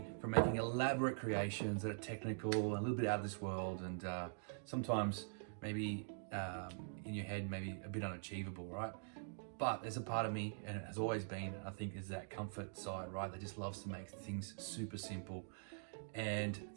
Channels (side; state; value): left; silent; digital silence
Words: from making elaborate creations that are technical, a little bit out of this world, and sometimes maybe in your head, maybe a bit unachievable, right? But there's a part of me, and it has always been, I think, is that comfort side, right? That just loves to make things super simple and